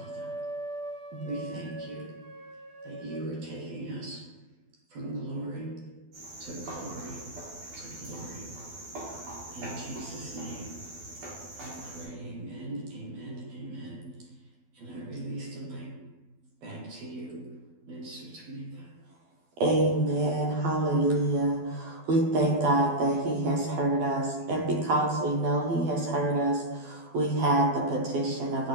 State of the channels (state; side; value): late; left; 12 ms